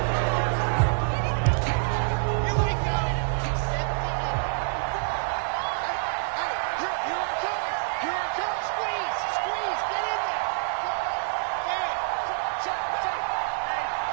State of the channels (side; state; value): left; silent; digital silence